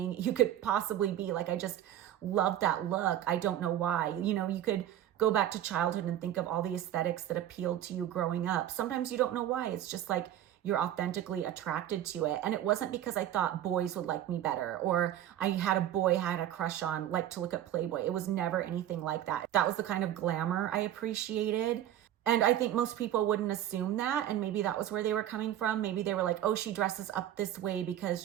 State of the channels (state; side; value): quieter; left; 11.8 dB